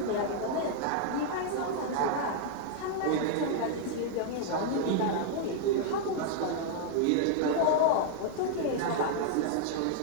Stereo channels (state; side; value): different; both; correlation -0.01